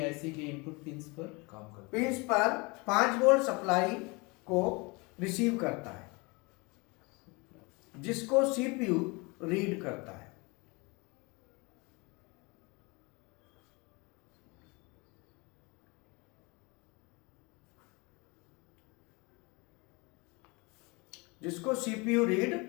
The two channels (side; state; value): right; quieter; 27.6 dB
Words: आईसी के इनपुट पिंस पर काम करता पिंस पर 5 वोल्ट सप्लाई को रिसीव करता है, जिसको सीपीयू रीड करता है। जिसको सीपीयू रीड